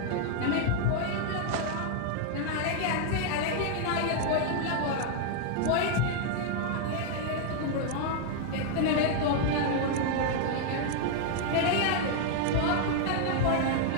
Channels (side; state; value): both; different; correlation 0.00